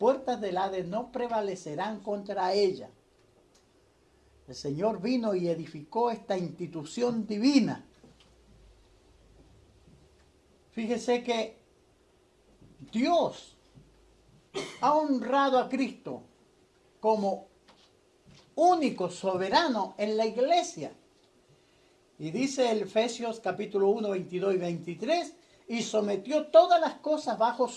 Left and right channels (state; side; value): identical; both; correlation 1.00